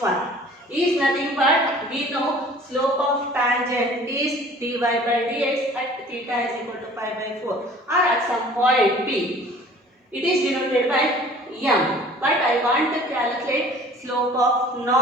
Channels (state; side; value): normal; both; correlation 0.49